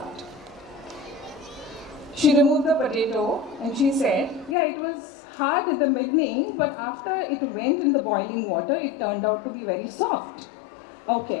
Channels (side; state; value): right; drops out; at 4.5 s